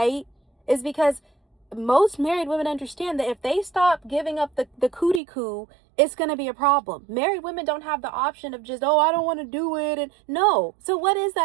is because most married women understand that if they stop giving up the cootie coo, it's going to be a problem. Married women don't have the option of just, oh, I don't want to do it. And no. So what is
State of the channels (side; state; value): left; drops out; at 5.2 s